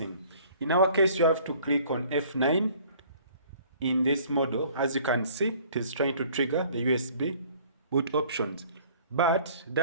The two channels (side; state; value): both; inverted; correlation -0.54